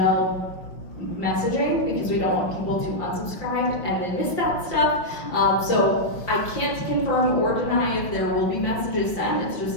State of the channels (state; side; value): late; right; 5.8 ms